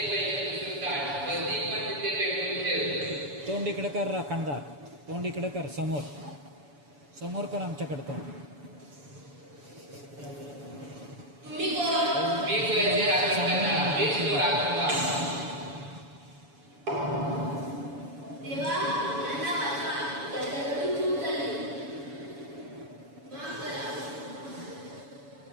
तोंड इकडे कर राखणदार. तोंड इकडे कर. समोर समोर कर आमच्याकडे तोंड. तुम्ही कोण? देवा त्यांना वाचवा. त्याच्याकडून चूक झाली. माफ करा.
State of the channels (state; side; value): late; left; 7.1 ms